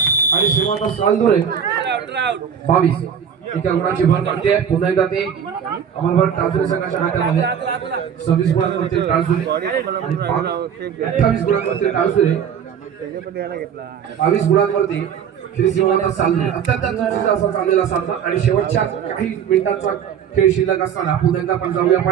आणि श्रीमंत सालजुरे 22 एका गुणाची भर पडते. पुन्हा एकदा ते अमर भारत टाळसुरे संघाच्या हातामध्ये 26 गुणांवरती टाळसुरे आणि 28 गुणांवरती टाळसुरे 22 गुणांवरती श्री श्रीमंत सालजुरे. अत्यंत चुरशीचा असा चाललेला सामना आणि शेवटच्या काही मिनिटांचा खेळ शिल्लक असताना पुन्हा एकदा आपण जाऊया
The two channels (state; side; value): quieter; left; 8.0 dB